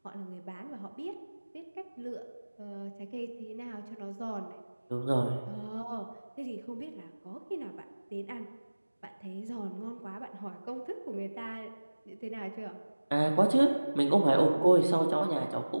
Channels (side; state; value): both; inverted; correlation -1.00